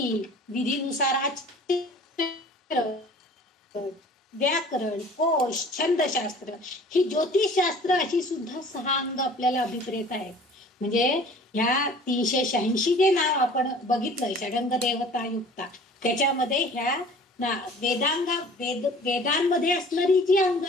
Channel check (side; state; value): both; normal; correlation 0.47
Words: विधीनुसार आचरण, व्याकरण, कोश, छंदशास्त्र, ही ज्योतिषशास्त्र अशी सुद्धा 6 अंग आपल्याला अभिप्रेत आहेत. म्हणजे ह्या 386 जे नाव आपण बघितलं षडंग देवता युक्ता, त्याच्यामध्ये ह्या वेदांमध्ये असणारी जी अंग